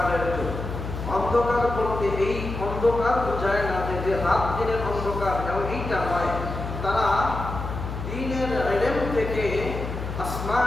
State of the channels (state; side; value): noise; left; hum, 6 dB below the sound